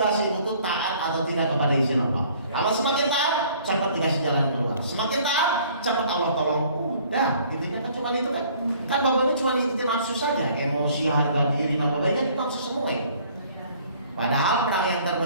ibu tuh taat atau tidak kepada izin Allah. Kalau semakin taat, cepat dikasih jalan keluar. Semakin taat, cepat Allah tolong. Udah, intinya kan cuma itu kan. Kan bapaknya cuma ngikutin nafsu saja, emosi, harga diri, nama baiknya itu nafsu semua ya. Padahal perang yang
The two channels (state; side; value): inverted; both; correlation -0.56